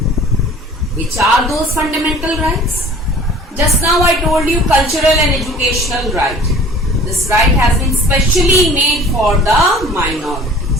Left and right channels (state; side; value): normal; both; correlation 0.47